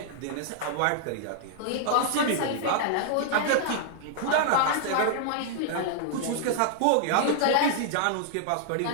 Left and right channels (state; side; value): different; both; correlation -0.01